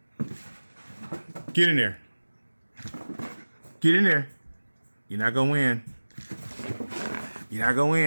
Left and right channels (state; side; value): inverted; both; correlation -1.00